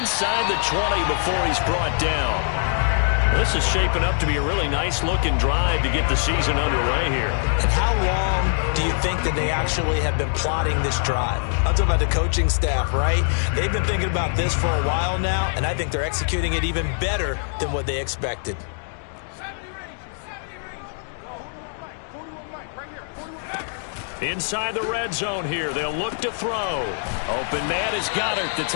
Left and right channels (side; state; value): right; silent; digital silence